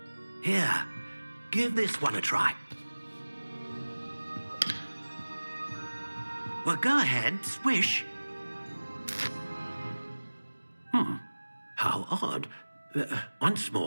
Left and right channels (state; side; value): inverted; both; correlation -1.00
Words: Here, give this one a try. Well, go ahead, swish. How odd. Once